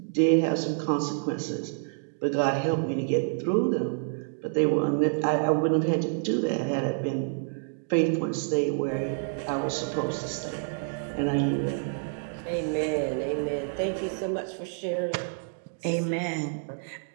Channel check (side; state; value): left; silent; digital silence